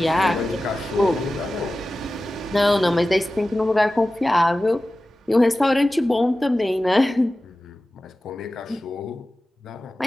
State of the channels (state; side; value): normal; both; correlation 0.95